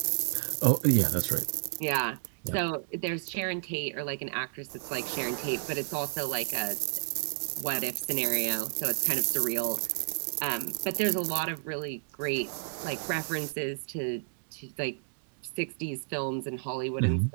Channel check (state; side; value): silent; left; digital silence